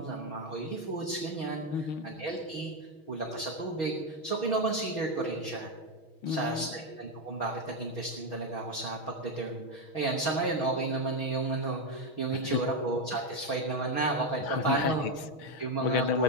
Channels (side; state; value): right; late; 6.3 ms